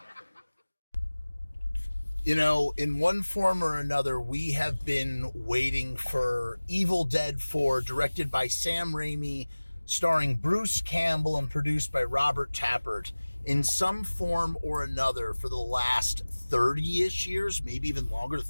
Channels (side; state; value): both; inverted; correlation -1.00